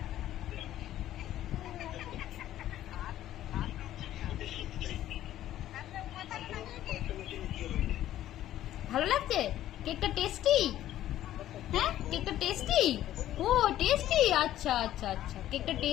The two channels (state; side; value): quieter; right; 12.9 dB